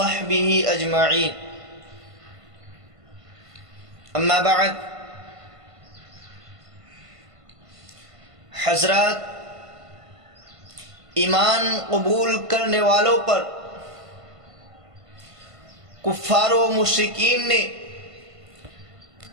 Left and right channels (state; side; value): late; left; 1.5 ms